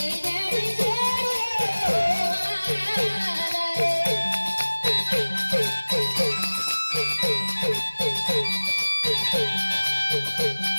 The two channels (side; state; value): both; inverted; correlation -1.00